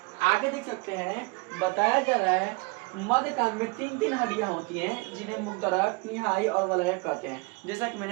आगे देख सकते हैं बताया जा रहा है मध्य कान में 3 हड्डियां होती हैं, जिन्हें मुक्तरक, निहाई और वलयक कहते हैं, जैसा कि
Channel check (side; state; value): left; quieter; 27.7 dB